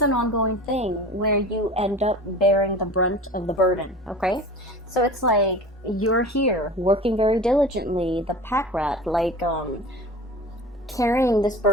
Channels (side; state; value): both; normal; correlation 0.37